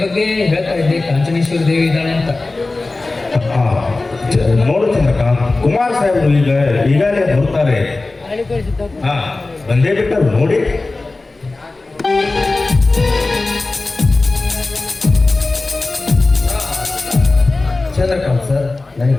ಬಗ್ಗೆ ಹೇಳ್ತಾ ಇದ್ದೆ. ಕಾಂಚನೇಶ್ವರಿ ದೇವಿ ಇದ್ದಾಳೆ ಅಂತ. ನೋಡು ಚಂದ್ರಕಾಂತ್, ಕುಮಾರ್ ಸಾಹೇಬರು ಈಗಾಗಲೇ ಬರ್ತಾರೆ. ಬಂದೇ ಬಿಟ್ಟರು ನೋಡಿ. ಚಂದ್ರಕಾಂತ್ ಸರ್,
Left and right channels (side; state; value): right; quieter; 3.3 dB